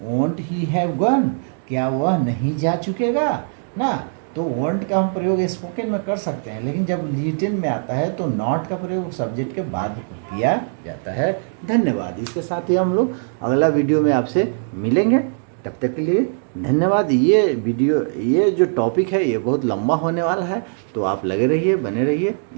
वॉन्ट ही हैव गॉन, क्या वह नहीं जा चुकेगा ना। तो वॉन्ट का हम प्रयोग स्पोकन में कर सकते हैं, लेकिन जब रिटन में आता है तो नॉट का प्रयोग सब्जेक्ट के बाद किया जाता है। धन्यवाद। इसके साथ ही हम लोग अगला वीडियो में आपसे मिलेंगे, तब तक के लिए धन्यवाद। ये वीडियो, ये जो टॉपिक है ये बहुत लंबा होने वाला है, तो आप लगे रहिए, बने रहिए।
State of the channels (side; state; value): left; silent; digital silence